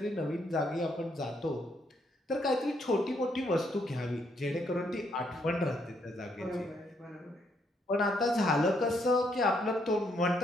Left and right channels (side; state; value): both; normal; correlation 0.73